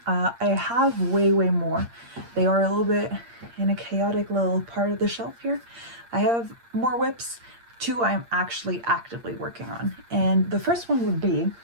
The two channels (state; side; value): late; left; 8.6 ms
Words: I have way more. They are a little bit in a chaotic little part of the shelf here. I have more whips. 2 I'm actually actively working on. And the first one would be,